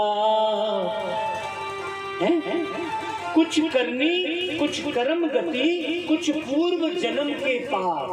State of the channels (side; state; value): both; identical; correlation 1.00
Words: है। कुछ करनी कुछ कर्म गति कुछ पूर्व जन्म के